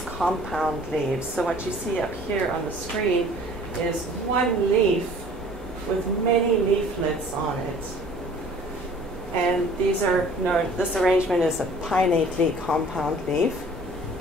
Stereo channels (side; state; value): both; normal; correlation 0.51